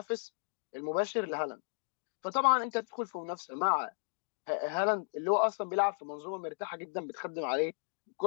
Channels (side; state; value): right; silent; 55 dB below the other